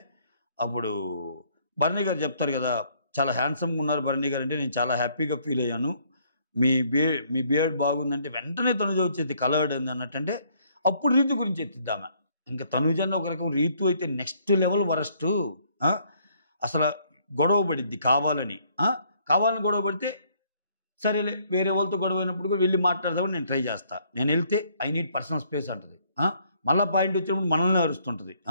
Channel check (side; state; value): both; inverted; correlation -0.66